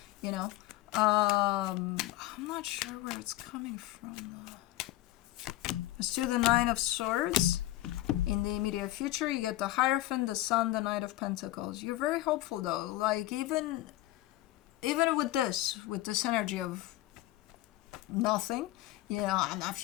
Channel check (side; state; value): right; quieter; 16.3 dB